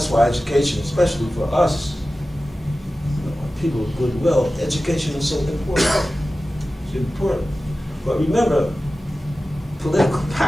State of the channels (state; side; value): normal; both; correlation 0.95